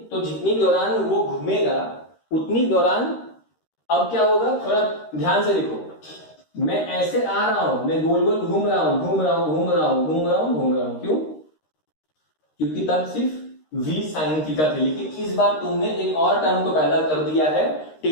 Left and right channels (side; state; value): right; late; 13 ms